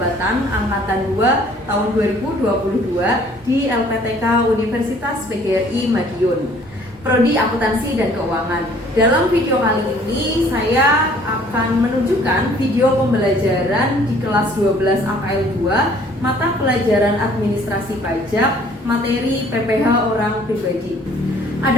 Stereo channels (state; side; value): normal; both; correlation 0.56